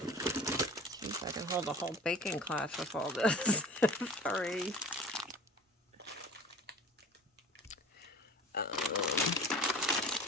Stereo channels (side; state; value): both; normal; correlation 0.42